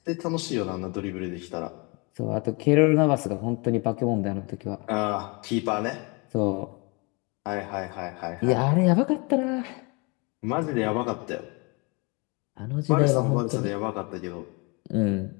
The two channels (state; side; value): quieter; right; 29.9 dB